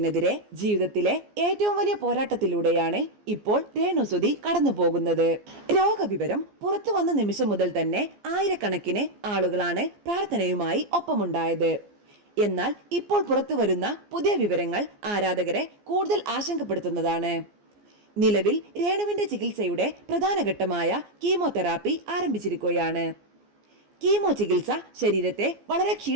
ജീവിതത്തിലെ ഏറ്റവും വലിയ പോരാട്ടത്തിലൂടെയാണ് ഇപ്പോൾ രേണുസുതി കടന്നു പോകുന്നത്. രോഗവിവരം പുറത്തു വന്ന നിമിഷം മുതൽ തന്നെ ആയിരക്കണക്കിന് ആളുകളാണ് പ്രാർത്ഥനയുമായി ഒപ്പമുണ്ടായത്. എന്നാൽ ഇപ്പോൾ പുറത്തു വരുന്ന പുതിയ വിവരങ്ങൾ ആരാധകരെ കൂടുതൽ ആശങ്കപ്പെടുത്തുന്നതാണ്. നിലവിൽ രേണുവിന്റെ ചികിത്സയുടെ പ്രധാന ഘട്ടമായ കീമോതെറാപ്പി ആരംഭിച്ചിരിക്കുകയാണ്. കീമോ ചികിത്സ ശരീരത്തെ വളരെ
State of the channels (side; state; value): left; late; 14 ms